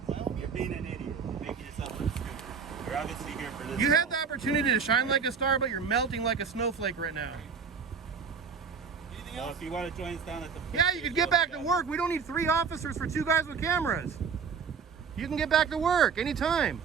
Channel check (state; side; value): quieter; left; 6.0 dB